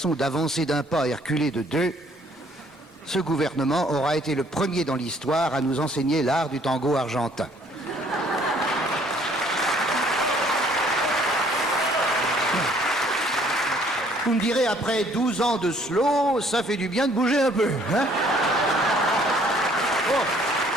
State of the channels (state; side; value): normal; both; correlation 0.61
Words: d'avancer d'un pas et reculer de deux, ce gouvernement aura été le premier dans l'histoire à nous enseigner l'art du tango argentin. Vous me direz, après 12 ans de slow, ça fait du bien de bouger un peu, hein? Oh.